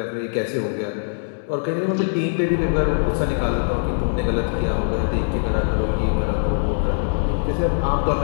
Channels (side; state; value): right; silent; digital silence